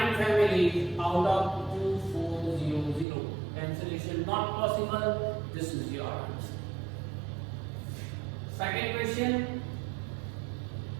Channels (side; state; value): left; drops out; at 3.1 s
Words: families out of 2400. Cancellation not possible. This is your answer. Second question.